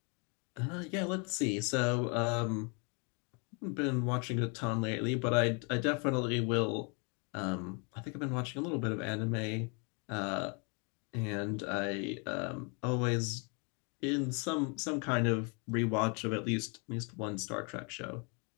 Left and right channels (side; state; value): right; quieter; 35.0 dB